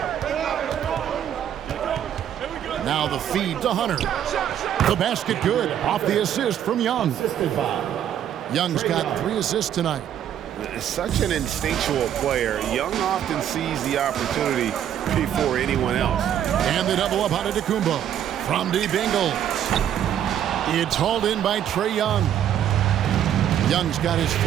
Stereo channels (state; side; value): quieter; left; 10.2 dB